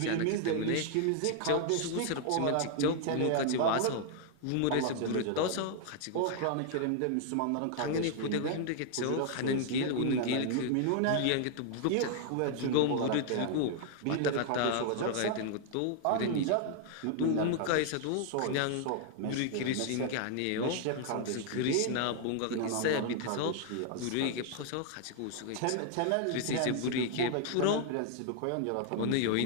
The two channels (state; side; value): different; both; correlation 0.00